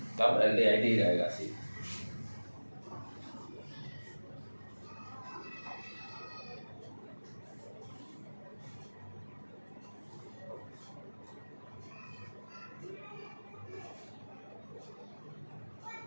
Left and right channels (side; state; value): both; inverted; correlation -1.00